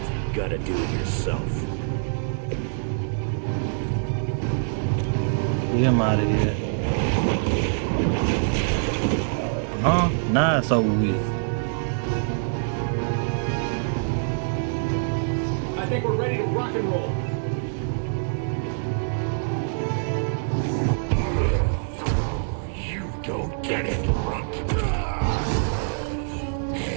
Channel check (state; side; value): silent; left; digital silence